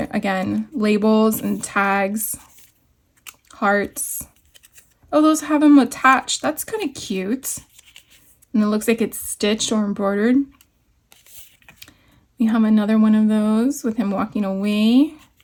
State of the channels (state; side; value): identical; both; correlation 1.00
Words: again, labels and tags, hearts. Oh, those have them attached. That's kind of cute. And it looks like it's stitched or embroidered. We have another one of those with him walking away.